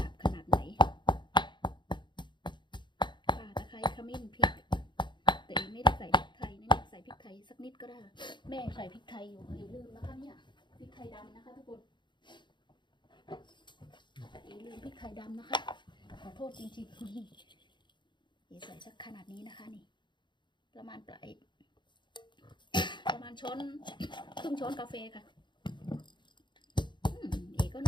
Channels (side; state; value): right; late; 0.22 ms